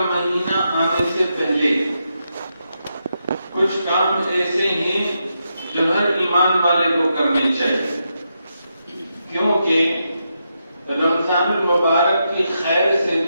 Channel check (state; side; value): inverted; both; correlation -0.84